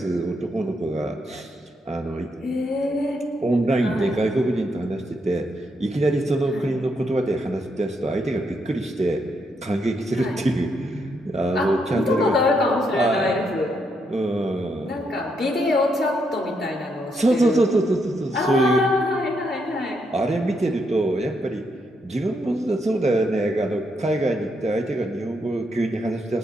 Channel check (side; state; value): both; normal; correlation 0.78